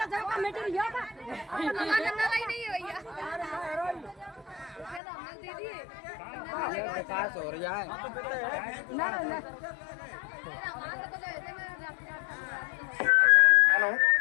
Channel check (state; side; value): drops out; right; at 5.0 s